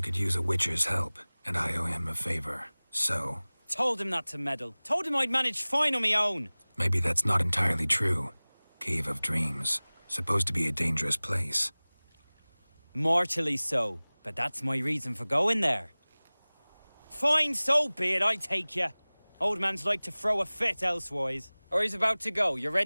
could use a witcher's help, and I owe him a favor. So... Told him not to meddle. Told him I'd manage fine on my own. Maybe that's not entirely true. Cave of Dreams. Supposed to be a dangerous place. Mortally so, but that's my reason for going there. Fine, so be it, I take you. Old man's like to throw a fit elsewise. Or he's about to go, you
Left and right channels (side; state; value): both; inverted; correlation -1.00